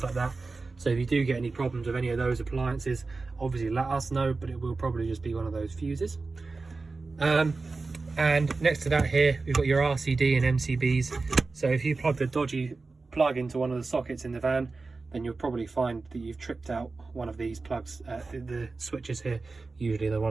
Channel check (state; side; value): quieter; left; 3.9 dB